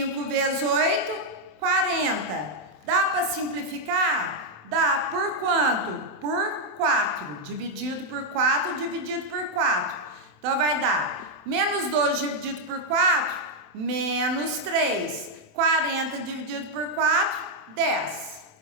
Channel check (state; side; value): late; left; 27 ms